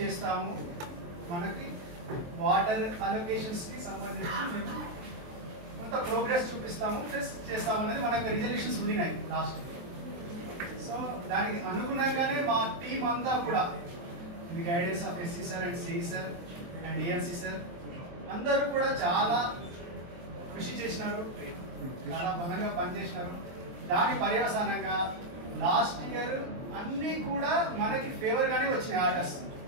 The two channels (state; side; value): late; left; 23 ms